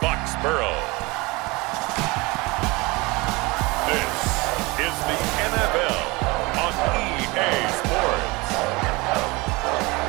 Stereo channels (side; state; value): left; quieter; 24.4 dB